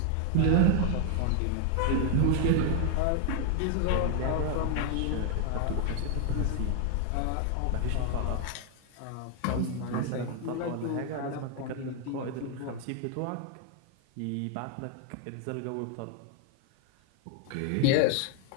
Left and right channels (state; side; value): different; both; correlation 0.00